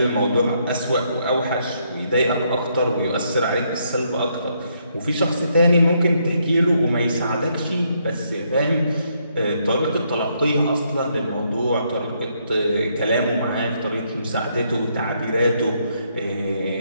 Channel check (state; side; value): inverted; both; correlation -0.74